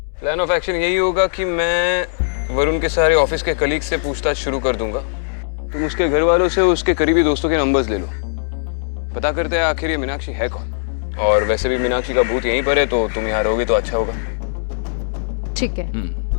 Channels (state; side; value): silent; right; digital silence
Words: प्लान ऑफ एक्शन यही होगा कि मैं वरुण के सारे ऑफिस के कलीग से पूछताछ शुरू कर दूंगा। तुम उसके घर वालों से उसके करीबी दोस्तों के नंबर्स ले लो। पता करते हैं आखिर ये मीनाक्षी है कौन। और वैसे भी मीनाक्षी का भूत यहीं पर है, तो तुम यहाँ रहोगे तो अच्छा होगा। ठीक है।